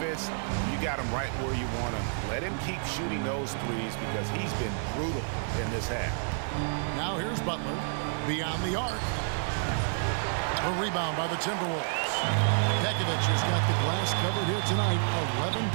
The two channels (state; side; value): silent; left; digital silence